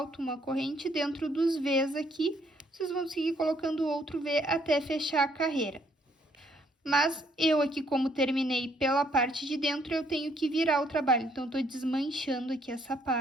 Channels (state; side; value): normal; both; correlation 0.68